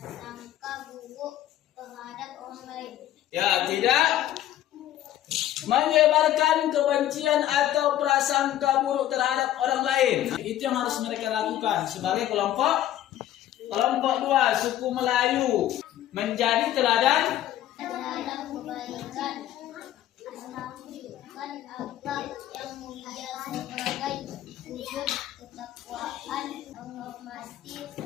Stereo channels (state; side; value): quieter; right; 12.7 dB